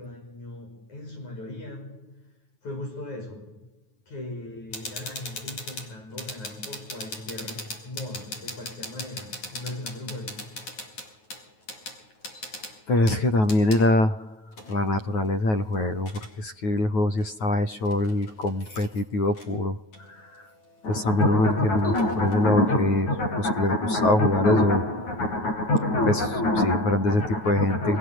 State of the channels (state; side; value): late; right; 9.4 ms